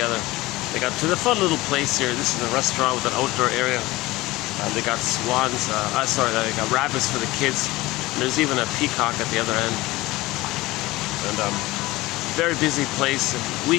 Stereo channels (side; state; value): right; quieter; 19.5 dB